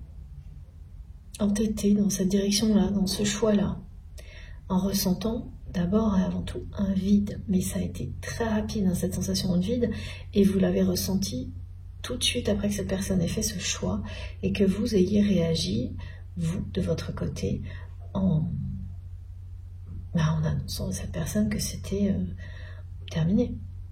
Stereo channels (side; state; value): both; identical; correlation 1.00